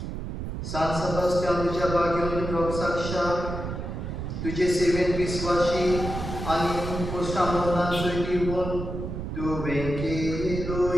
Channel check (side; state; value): right; noise; rumble, 5 dB below the sound